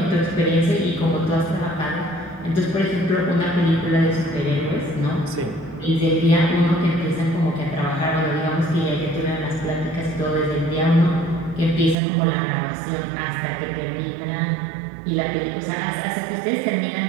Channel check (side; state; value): left; drops out; at 12.0 s